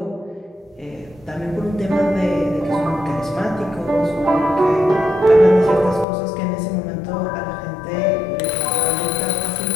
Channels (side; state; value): right; drops out; at 6.1 s